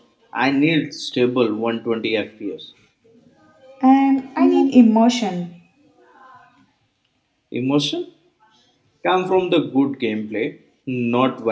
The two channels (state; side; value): identical; both; correlation 1.00